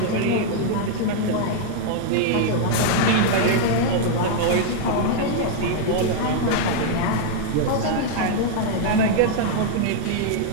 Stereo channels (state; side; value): different; both; correlation 0.00